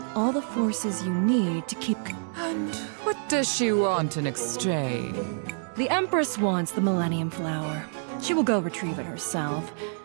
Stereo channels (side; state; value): left; silent; digital silence